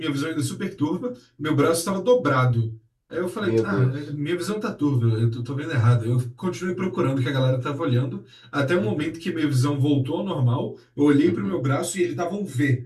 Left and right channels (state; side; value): identical; both; correlation 1.00